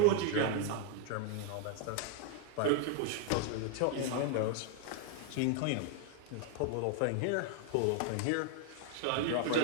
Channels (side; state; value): both; different; correlation 0.00